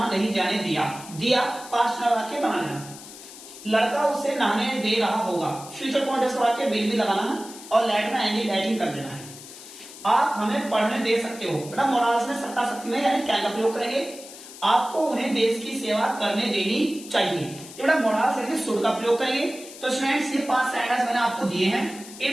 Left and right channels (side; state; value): left; noise; hiss, 16 dB below the sound